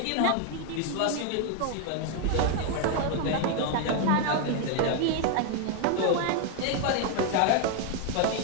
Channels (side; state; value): both; different; correlation 0.01